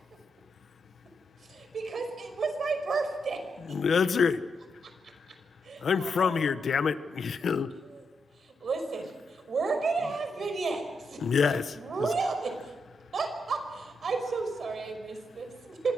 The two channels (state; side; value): normal; both; correlation 0.82